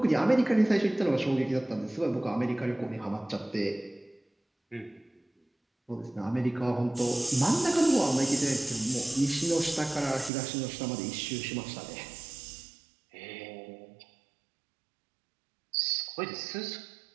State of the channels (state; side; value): drops out; left; at 10.3 s